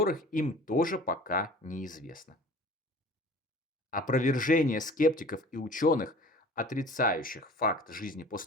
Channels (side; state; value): both; normal; correlation 0.44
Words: им тоже пока неизвестно. Опровержение скептиков и ученых, отрицающих факт жизни